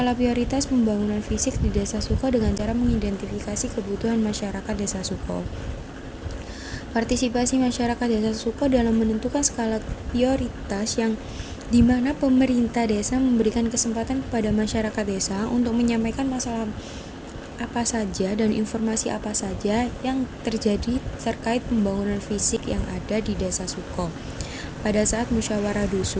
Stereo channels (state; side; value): identical; both; correlation 1.00